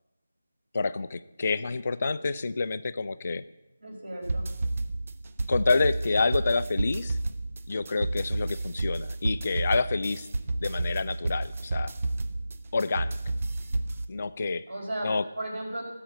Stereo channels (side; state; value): both; inverted; correlation -0.92